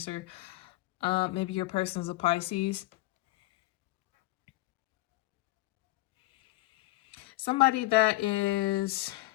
Maybe your person's a Pisces. Somebody that is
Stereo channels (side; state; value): right; quieter; 19.0 dB